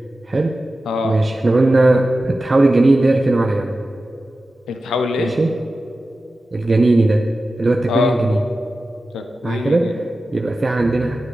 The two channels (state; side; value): normal; both; correlation 0.94